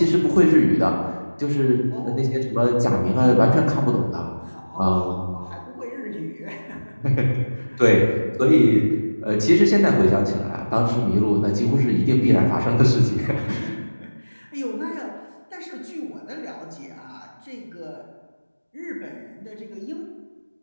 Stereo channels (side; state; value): both; inverted; correlation -1.00